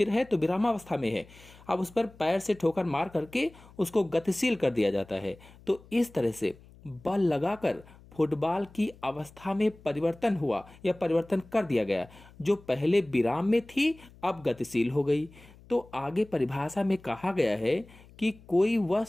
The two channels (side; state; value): left; noise; hum, 23 dB below the sound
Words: है तो विरामावस्था में है। अब उस पर पैर से ठोकर मार करके उसको गतिशील कर दिया जाता है। तो इस तरह से बल लगाकर फुटबॉल की अवस्था में परिवर्तन हुआ या परिवर्तन कर दिया गया, जो पहले विराम में थी अब गतिशील हो गई। तो आगे परिभाषा में कहा गया है कि कोई